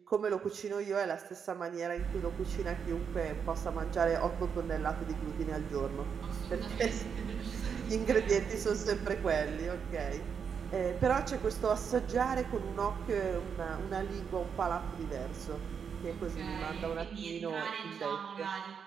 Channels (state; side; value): quieter; left; 6.8 dB